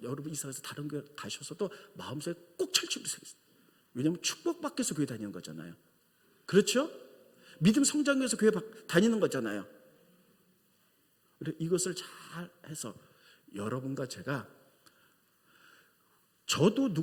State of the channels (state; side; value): identical; both; correlation 1.00